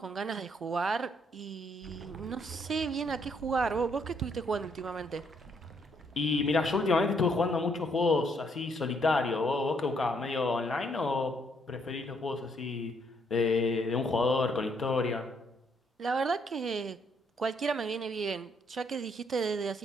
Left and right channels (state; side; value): normal; both; correlation 0.71